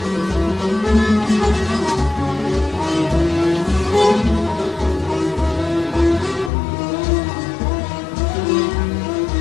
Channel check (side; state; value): right; drops out; at 6.5 s